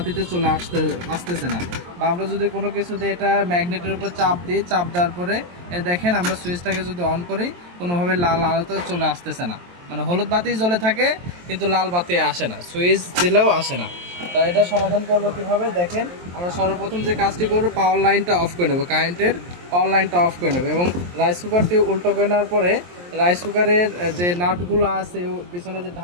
চলে আসতেছে না। বা আমরা যদি কোনো কিছুতে এটা ম্যাগনেটের উপর চাপ দিই, চাপ দেওয়ার পরে দেখেন আমরা সুইচটাকে যদি অন করি, কোনোভাবে লাল আলোতে চলে আসতেছে না। মানে হলুদ বাতি জ্বলে থাকে কিন্তু লাল বাতি আসে না, সুইচ দিলেও আসে না। তো এটা সমাধান করবো কীভাবে দেখেন। আমরা সর্বপ্রথম যে কাজটি করবো, পাওয়ার লাইনটা অফ করে নেবো, কারেন্টের পাওয়ার লাইনটা অফ করে নেবো এবং রাইস কুকারটি উল্টো করে নেওয়ার পরে রাইস কুকারের যে নাটগুলো আছে পিছনে যে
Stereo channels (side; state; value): left; late; 23 ms